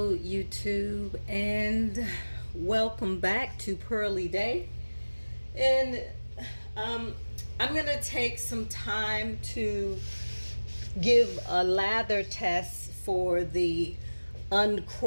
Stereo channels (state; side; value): inverted; both; correlation -1.00